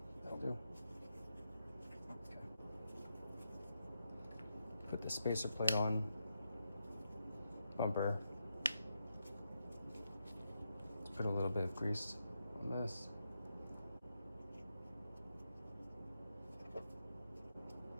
do. Okay. Put the spacer plate on, bumper. Let's put a little bit of grease on this.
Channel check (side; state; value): both; inverted; correlation -0.85